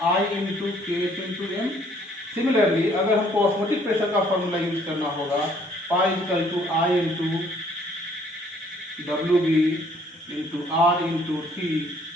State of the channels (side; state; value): both; normal; correlation 0.62